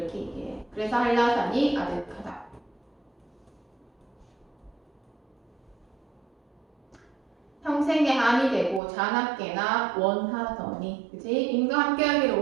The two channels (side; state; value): left; drops out; at 8.8 s